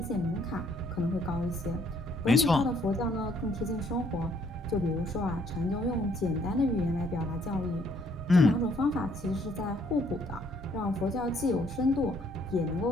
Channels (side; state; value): both; normal; correlation 0.66